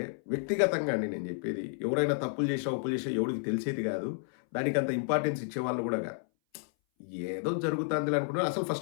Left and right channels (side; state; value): right; silent; 57 dB below the other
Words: వ్యక్తిగతంగా అండి నేను చెప్పేది. ఎవరైనా తప్పులు చేసినా, ఒప్పులు చేసినా ఎవడికి తెలిసేది కాదు. దానికంత ఇంపార్టెన్స్ ఇచ్చేవాళ్ళు కూడా కాదు. ఏదో జరుగుతాందిలే అనుకున్నారు. అసలు